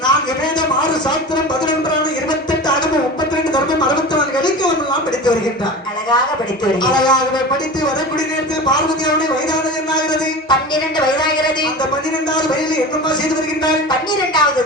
நான் வேதம் 6 சாஸ்திரம் 11 28 அகமம் 32 தர்மம் 64 இலக்கியம் எல்லாம் படித்து வருகின்றார். அழகாக படித்து வருகிறார். அழகாகவே படித்து வரக்கூடிய நேரத்தில் பார்வதியானவருடைய வயதானது என்னாகிறது? 12 வயதாகிறது. அந்த 12வது வயதில் என்னம்மா செய்து வருகின்றார்? 12வது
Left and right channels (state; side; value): normal; both; correlation 0.32